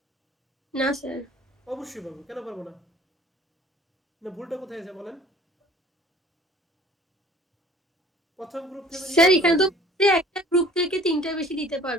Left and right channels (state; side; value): normal; both; correlation 0.50